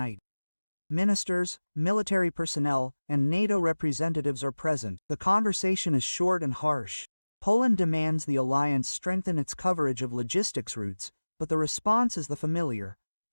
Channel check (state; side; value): inverted; both; correlation -1.00